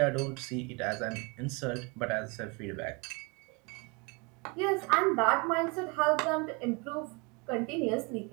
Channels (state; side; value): quieter; left; 30.1 dB